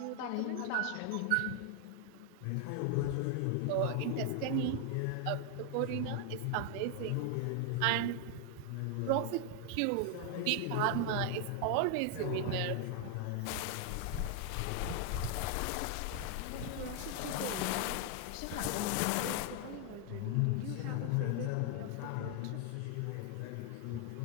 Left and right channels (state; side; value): different; both; correlation 0.00